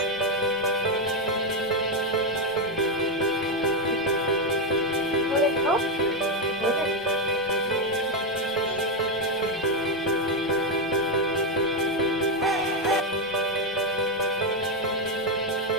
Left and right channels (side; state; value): both; normal; correlation 0.05